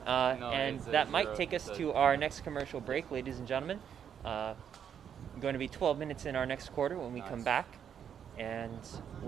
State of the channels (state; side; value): quieter; left; 8.4 dB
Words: And that might take us to our next commercial break, ladies and gentlemen. Going to be 12 minutes in our next quarter when we come back. And